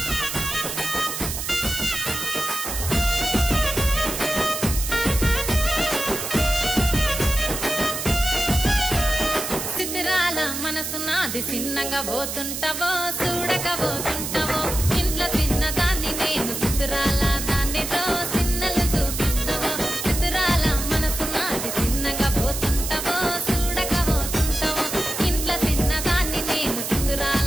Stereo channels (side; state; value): right; noise; hiss, 5 dB below the sound